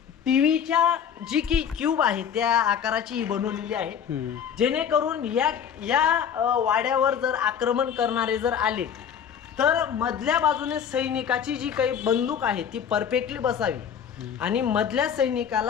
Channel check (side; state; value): right; quieter; 8.1 dB